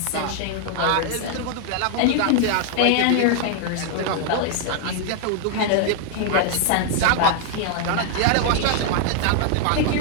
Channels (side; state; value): both; different; correlation 0.00